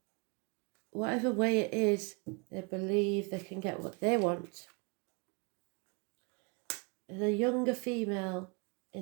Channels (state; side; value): quieter; left; 31.2 dB